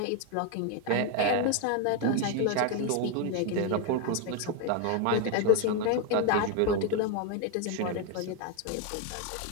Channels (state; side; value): different; both; correlation 0.01